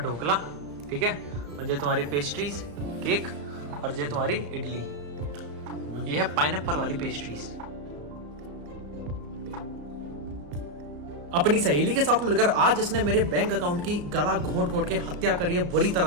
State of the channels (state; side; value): late; left; 34 ms